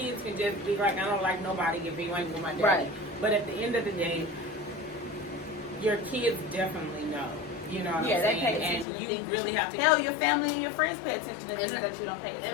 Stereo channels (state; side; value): drops out; right; at 8.8 s